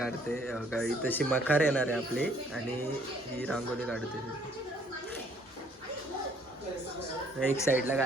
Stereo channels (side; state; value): both; normal; correlation 0.62